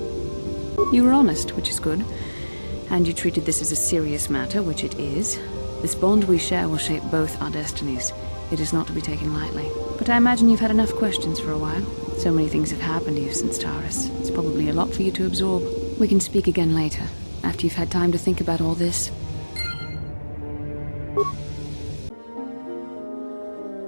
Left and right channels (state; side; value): inverted; both; correlation -1.00